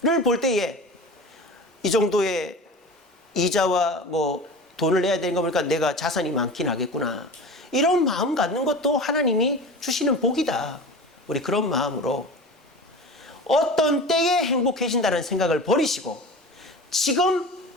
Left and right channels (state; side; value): normal; both; correlation 0.34